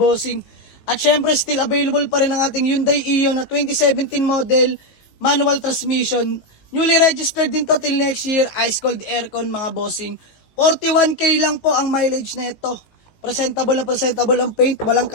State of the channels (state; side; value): late; right; 18 ms